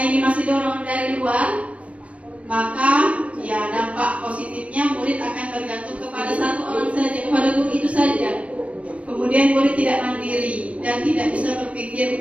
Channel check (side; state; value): left; late; 0.064 ms